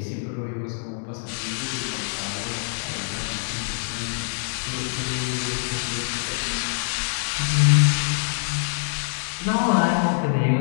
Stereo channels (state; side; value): silent; right; 62 dB below the other